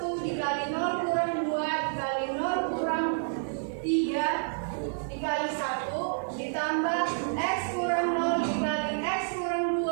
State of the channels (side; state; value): left; silent; digital silence